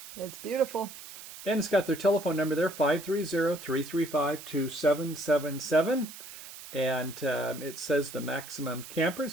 It's beautiful. And it's got their telephone number there, 530-335-2777. And it says the maximum campers,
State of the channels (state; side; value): noise; right; hiss, 14 dB below the sound